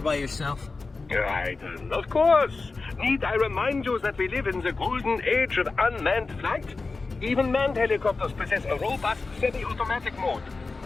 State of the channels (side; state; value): right; quieter; 3.9 dB